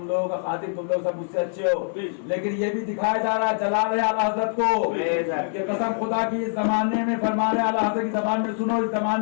لوگوں کا خادم, تم لوگ سب مجھ سے اچھے ہو, لیکن یہ بھی دکھایا جا رہا ہے, جلا رہے اعلیٰ حضرت کو. یہ قسم خدا کی اس زمانے میں فرما رہے اعلیٰ حضرت کی زبان میں سنو, اس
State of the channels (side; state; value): right; silent; 60 dB below the other